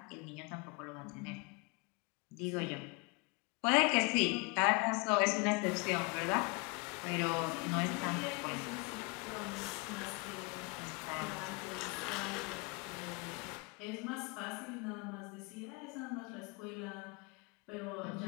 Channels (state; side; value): quieter; right; 30.0 dB